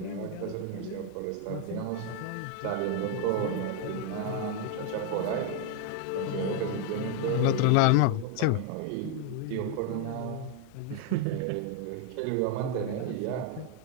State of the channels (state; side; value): different; both; correlation 0.00